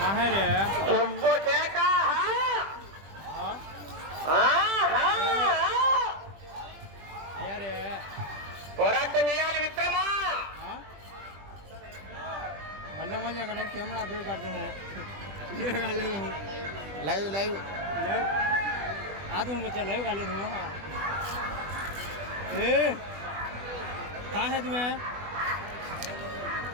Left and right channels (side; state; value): left; late; 20 ms